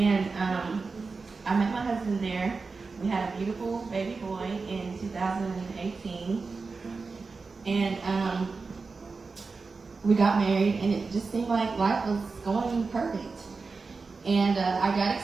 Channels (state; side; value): quieter; left; 4.3 dB